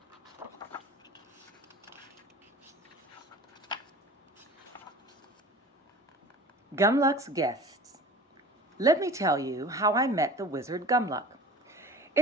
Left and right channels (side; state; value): both; normal; correlation 0.41